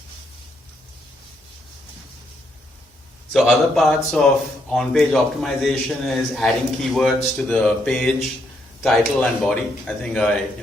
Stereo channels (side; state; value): both; normal; correlation 0.75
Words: So other parts of on-page optimization is adding keywords to the page, title and body. I think I